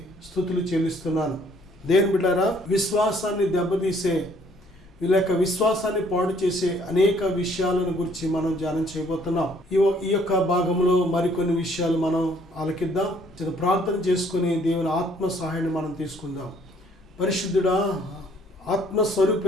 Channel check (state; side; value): normal; both; correlation 0.62